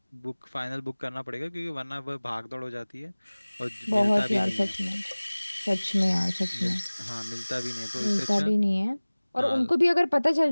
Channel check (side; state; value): both; inverted; correlation -1.00